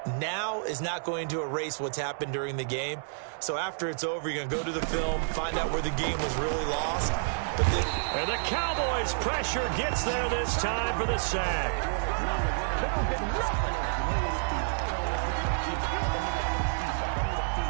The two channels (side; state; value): left; silent; digital silence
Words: now is not going to erase what's happened during the game. So after it's over, you're going to go to the film, find out where the game was really lost. And the Cowboys' pressure gets there this time for the sack.